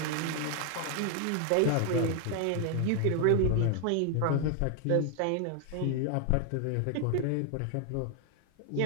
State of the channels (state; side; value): different; both; correlation 0.00